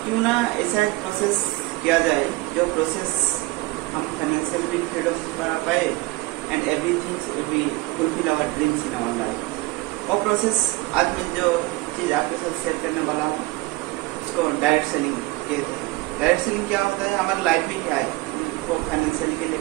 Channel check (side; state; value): left; quieter; 21.2 dB